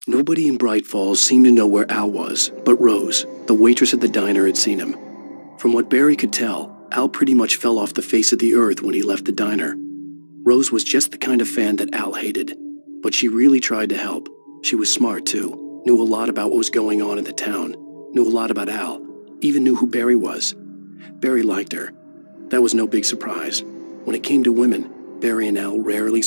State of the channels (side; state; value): both; inverted; correlation -1.00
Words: Nobody in Bright Falls seemed to know where Al was, but Rose, the waitress at the diner, had seen him. From what Barry could tell, Al pretty much fell off the face of the earth when he left the diner. Rose was just the kind of fan that Al hated, but she really tried to help. She was smart, too, knew a lot about what was going on in the town, knew a lot about Al, even knew who Barry was. Barry liked her. That was no big surprise. When it came to women, Barry and Al rarely